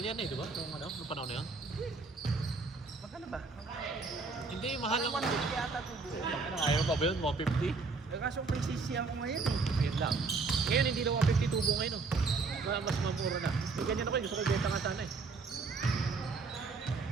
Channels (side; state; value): left; quieter; 4.2 dB